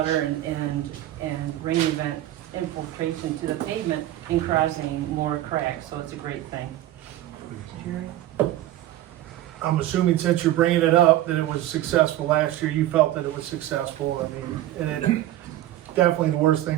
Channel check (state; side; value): quieter; left; 14.1 dB